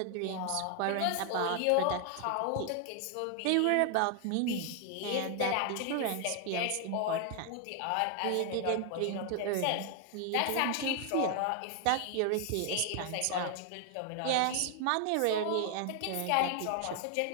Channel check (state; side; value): different; both; correlation 0.00